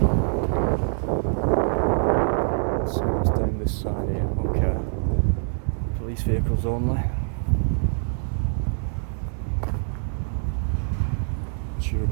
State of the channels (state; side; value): silent; left; digital silence